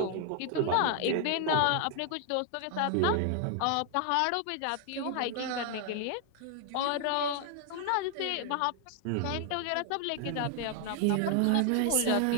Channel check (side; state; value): both; different; correlation 0.00